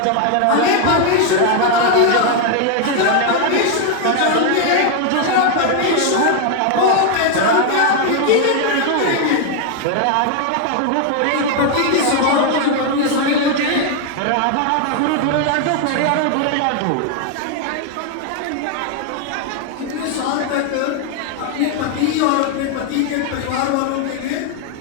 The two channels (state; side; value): different; both; correlation 0.01